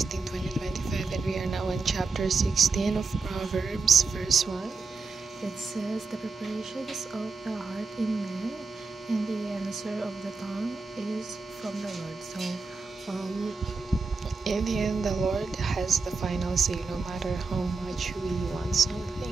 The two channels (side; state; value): left; quieter; 4.3 dB